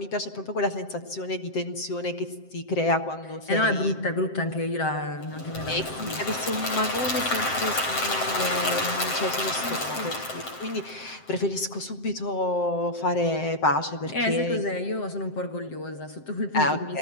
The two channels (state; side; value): late; right; 7.7 ms